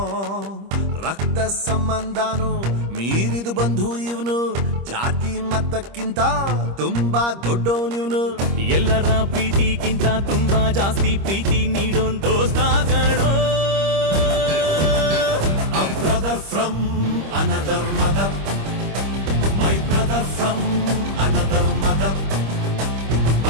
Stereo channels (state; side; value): late; left; 25 ms